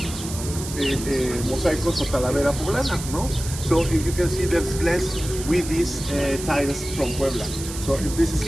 mosaicos o talavera poblana, ¿no? So you can see there's glass with these tiles from Puebla. So this is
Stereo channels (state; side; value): noise; right; hiss, 10 dB below the sound